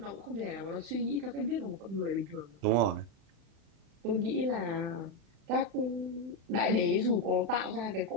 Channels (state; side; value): late; left; 35 ms